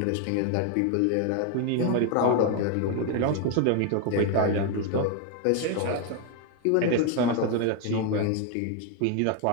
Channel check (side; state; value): both; different; correlation 0.00